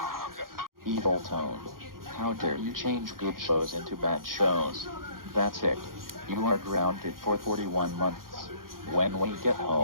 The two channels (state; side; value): late; left; 0.91 ms